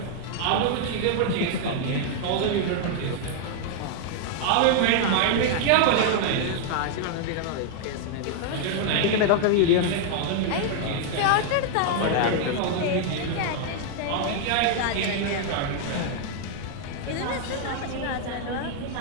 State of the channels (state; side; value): different; both; correlation 0.00